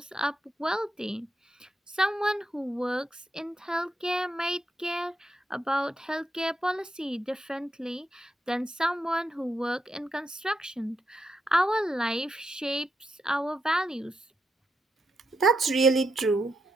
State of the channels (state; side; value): normal; both; correlation 0.83